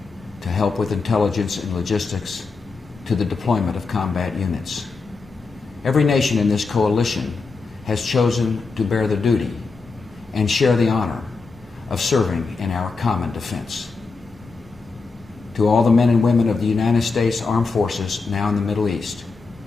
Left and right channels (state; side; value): quieter; right; 4.3 dB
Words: to help with intelligence and logistics to the deployment of combat units. Every nation in this coalition has chosen to bear the duty and share the honor of serving in our common defense. To all the men and women of the United States Armed Forces now in the Middle East,